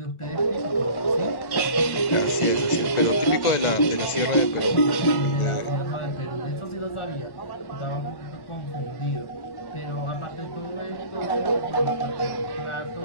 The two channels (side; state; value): right; late; 1.5 ms